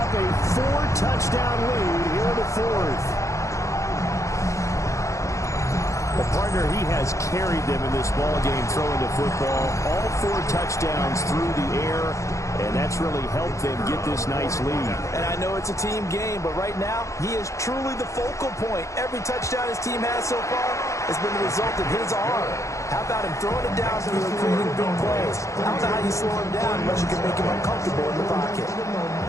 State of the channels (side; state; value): right; late; 0.15 ms